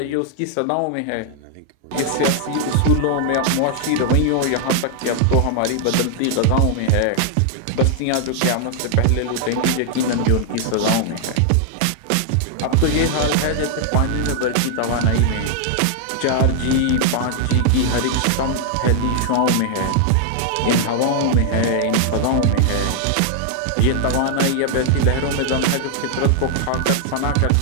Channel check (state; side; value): different; both; correlation -0.01